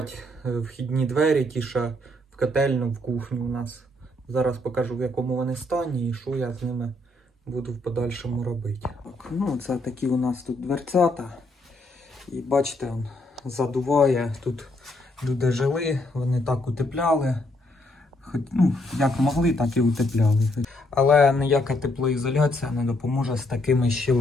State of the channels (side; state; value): both; normal; correlation 0.73